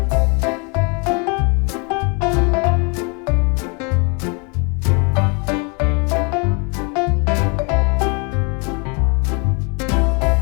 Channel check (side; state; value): right; quieter; 33.4 dB